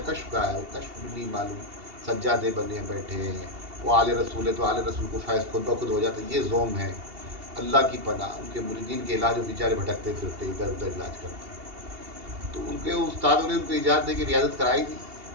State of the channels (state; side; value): late; left; 2.8 ms